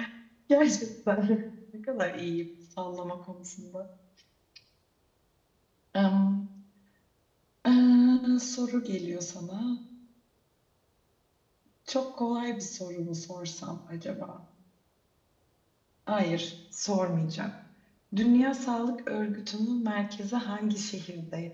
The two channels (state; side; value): identical; both; correlation 1.00